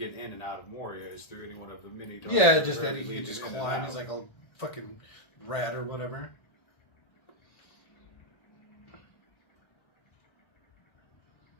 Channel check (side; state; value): right; late; 1.3 ms